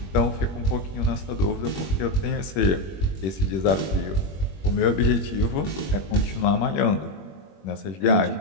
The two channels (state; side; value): late; right; 21 ms